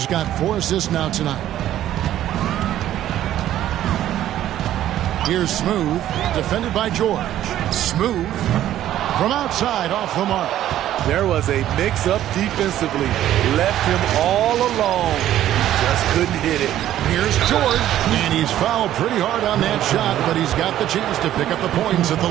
got 4 assists now tonight. Here's Smooth, defended by George. Smooth from outside off the mark. There was a mix-up defensively. Left him all alone. He just couldn't hit it. Here's George, and he's fouled pretty hard on that shot, but he's got the chance to pick up the points at the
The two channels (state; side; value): quieter; left; 12.4 dB